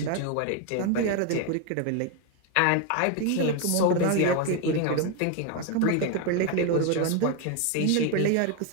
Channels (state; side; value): different; both; correlation 0.01